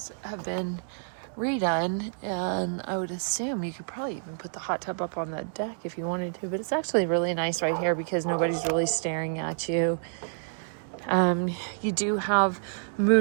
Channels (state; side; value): silent; left; digital silence